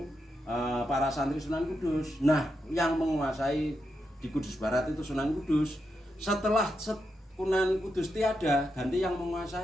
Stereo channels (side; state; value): both; normal; correlation 0.85